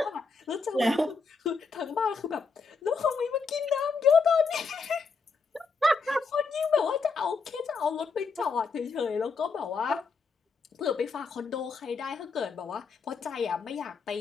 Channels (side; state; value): right; quieter; 4.6 dB